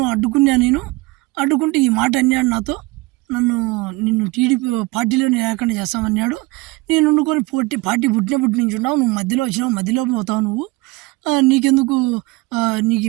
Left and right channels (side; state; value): left; quieter; 22.6 dB